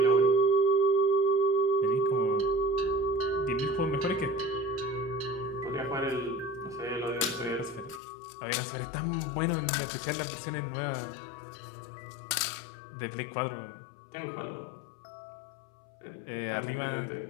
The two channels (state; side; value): drops out; right; at 8.0 s